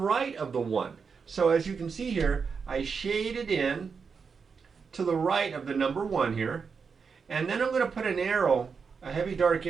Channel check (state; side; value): quieter; left; 5.6 dB